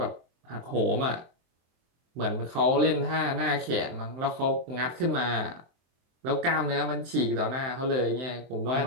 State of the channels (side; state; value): left; late; 23 ms